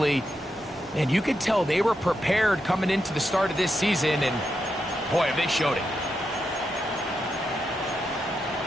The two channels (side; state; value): both; normal; correlation 0.85